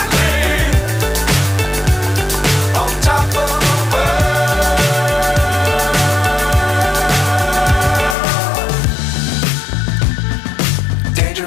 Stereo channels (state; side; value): drops out; right; at 8.2 s